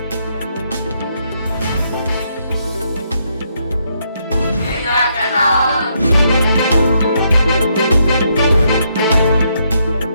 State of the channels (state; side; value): inverted; both; correlation -0.75